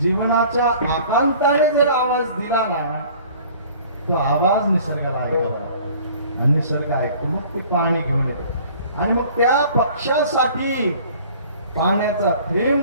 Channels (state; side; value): inverted; both; correlation -0.50